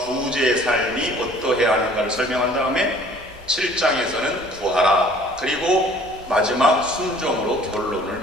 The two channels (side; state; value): both; normal; correlation 0.53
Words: 삶이 어떠해야 하는가를 설명한 다음에 7장에서는 구하라, 그리고 마지막 순종으로 결론을